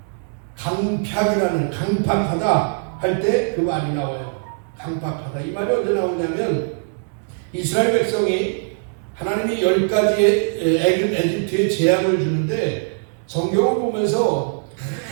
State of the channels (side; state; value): left; silent; 65 dB below the other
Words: 강팍하다 할 때 그 말이 나와요. 강팍하다. 이 말이 언제 나오냐면 이스라엘 백성이 하나님이 10가지의 에집트에 재앙을 주는데 성경을 보면서